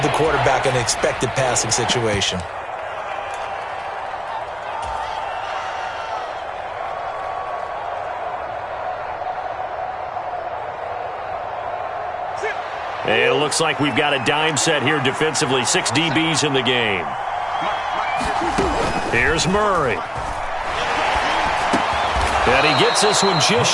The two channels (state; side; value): identical; both; correlation 1.00